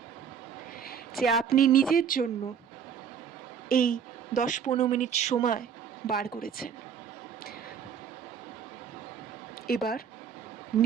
যে আপনি নিজের জন্য এই 10-15 মিনিট সময় বার করেছেন। এবার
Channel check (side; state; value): left; quieter; 7.5 dB